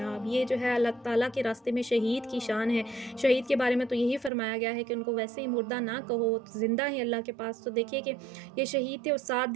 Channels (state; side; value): drops out; left; at 4.3 s